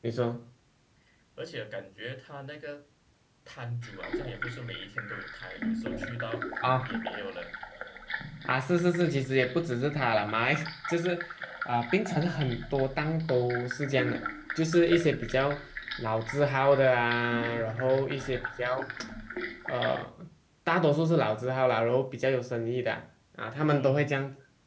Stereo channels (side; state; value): both; identical; correlation 1.00